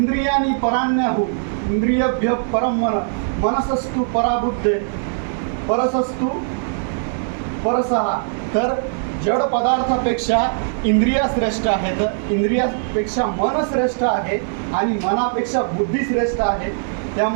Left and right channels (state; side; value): silent; left; digital silence